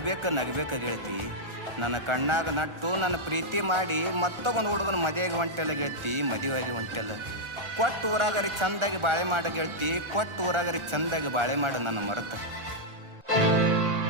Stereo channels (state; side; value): late; left; 1.4 ms